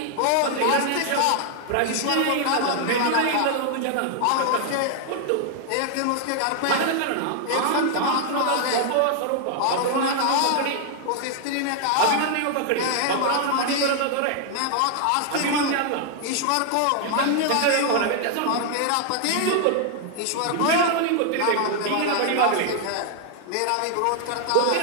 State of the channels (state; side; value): different; both; correlation 0.00